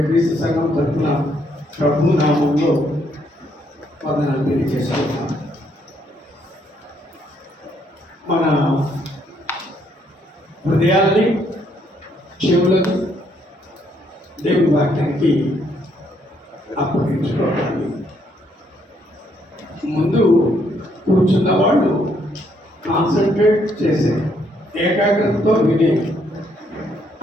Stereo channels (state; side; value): normal; both; correlation 0.71